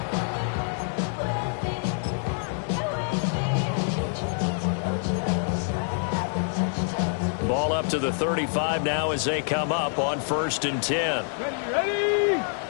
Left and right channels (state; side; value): silent; right; digital silence